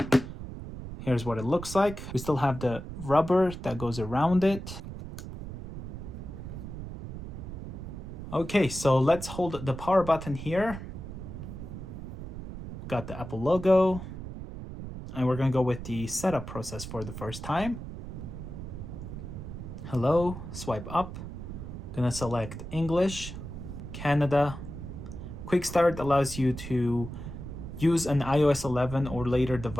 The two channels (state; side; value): noise; right; rumble, 9 dB below the sound